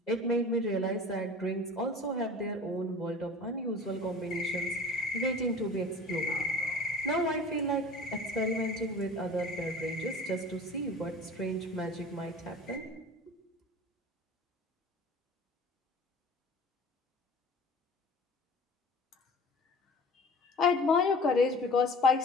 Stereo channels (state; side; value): normal; both; correlation 0.41